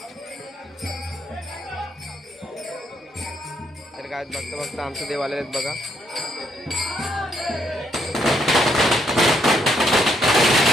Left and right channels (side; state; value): both; normal; correlation 0.74